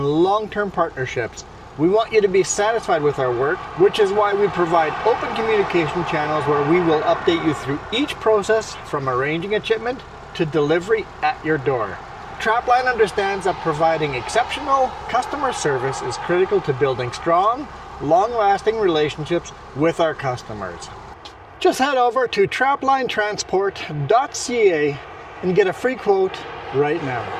long-term partnerships. We want you to be satisfied with our work, which is why we provide open communication channels where we will update you through each process from arranging a shipment to delivery at your door. Trapline understands that providing exceptional customer service is critical to building strong, long-lasting relationships with our customers. Just head over to traplinetransport.ca and get a free quote right now.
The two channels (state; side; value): identical; both; correlation 1.00